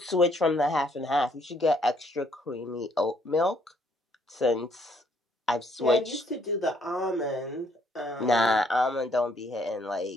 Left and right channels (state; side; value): normal; both; correlation 0.67